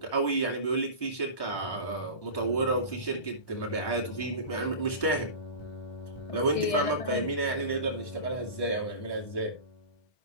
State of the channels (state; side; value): late; right; 1.1 ms